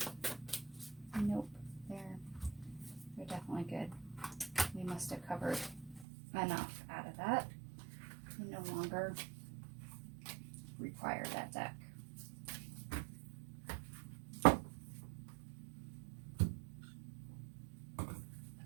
Nope, they're definitely good. We must have covered enough out of that. We no longer require that deck.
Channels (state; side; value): drops out; left; at 6.1 s